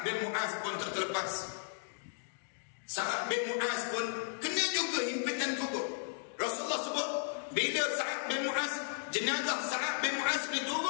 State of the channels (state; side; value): silent; right; digital silence